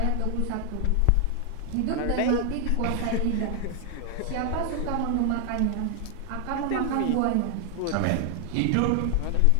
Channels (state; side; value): different; both; correlation 0.00